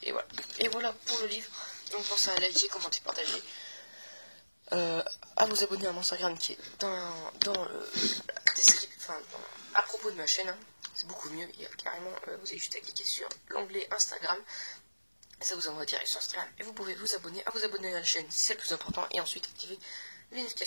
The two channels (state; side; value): inverted; both; correlation -1.00